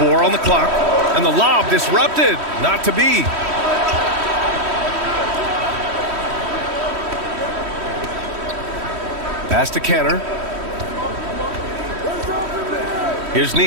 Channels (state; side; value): late; left; 3.1 ms